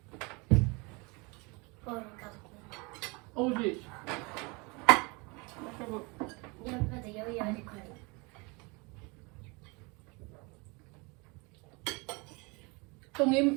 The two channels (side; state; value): left; quieter; 28.2 dB